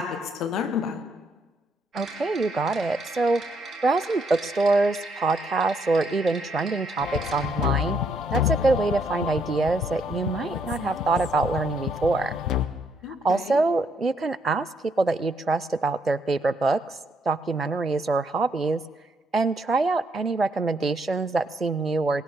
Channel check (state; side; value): normal; both; correlation 0.73